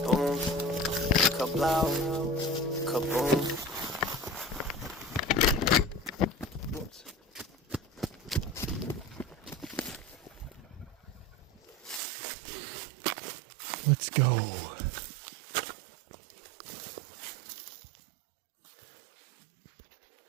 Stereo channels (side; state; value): left; drops out; at 12.0 s